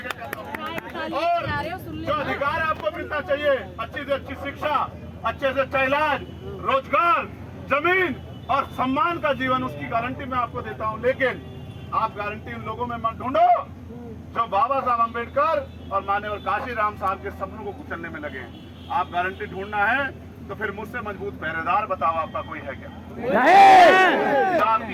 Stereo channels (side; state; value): both; identical; correlation 1.00